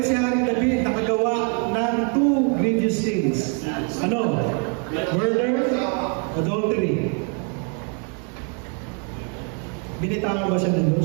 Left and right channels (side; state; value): left; quieter; 39.3 dB